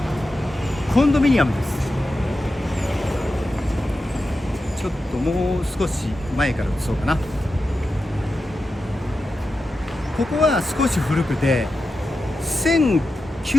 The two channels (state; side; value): normal; both; correlation 0.90